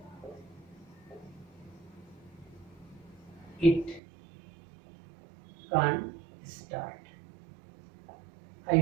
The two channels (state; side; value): drops out; left; at 4.0 s